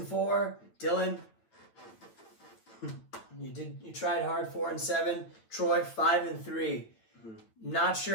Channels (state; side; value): late; right; 9.0 ms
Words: Dylan, you tried hard. 4-7. Troy 5-3. Not